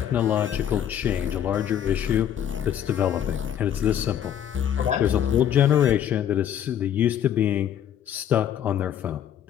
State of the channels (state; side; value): quieter; right; 9.9 dB